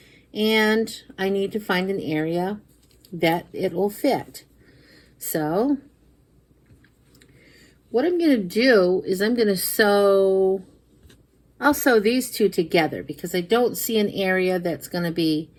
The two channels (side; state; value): both; identical; correlation 1.00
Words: And I need to find an area that it will fit. So what I'm going to do is I'm going to sew, I'll sew these two together because I don't see an area that's going to be